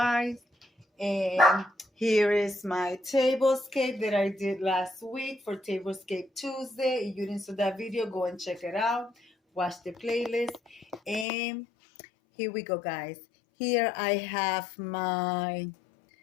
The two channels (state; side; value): drops out; right; at 11.2 s